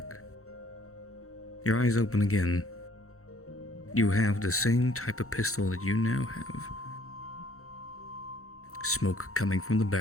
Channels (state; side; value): late; right; 0.64 ms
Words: Your eyes open again. You have the same type of pistol that you now have. Smoke coming from the